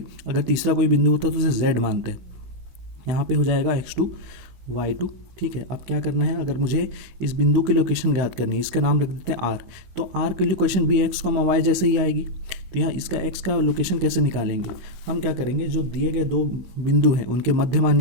अगर तीसरा कोई बिंदु होता है तो उसे z मानते हैं। यहाँ पे हो जाएगा x2 y2, ठीक है। अब क्या करना है, अगर मुझे इस बिंदु की लोकेशन ज्ञात करनी है, इसका नाम रख देते हैं r। तो r की लोकेशन भी x, y जैसे ही आएगी। तो यहाँ इसका x का लोकेशन कैसे निकालेंगे, हम क्या करेंगे, जो दिए गए दो बिंदु हैं उनके मध्य मान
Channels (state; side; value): late; left; 16 ms